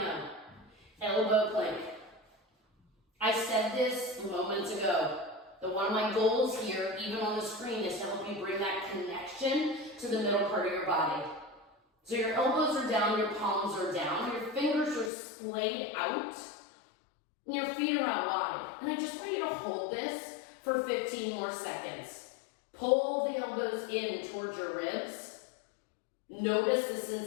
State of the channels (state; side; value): drops out; right; at 15.1 s